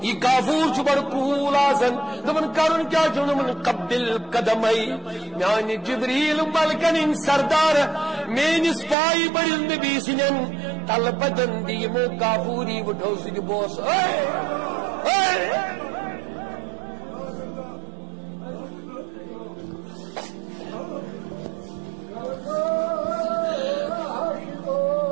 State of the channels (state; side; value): drops out; left; at 9.0 s